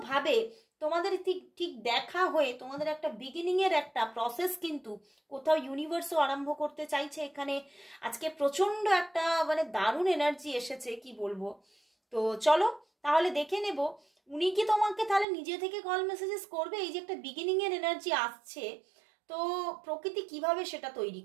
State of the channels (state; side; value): drops out; left; at 15.2 s